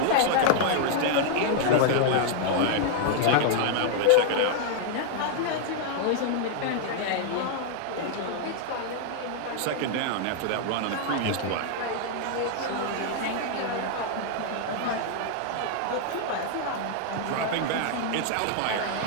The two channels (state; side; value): different; both; correlation 0.00